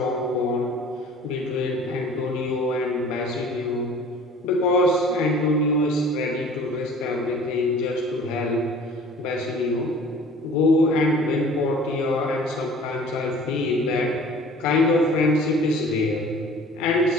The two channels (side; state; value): both; normal; correlation 0.47